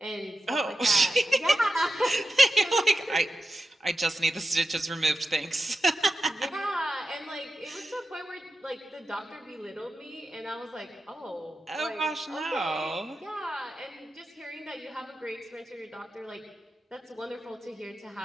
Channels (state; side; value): normal; both; correlation 0.91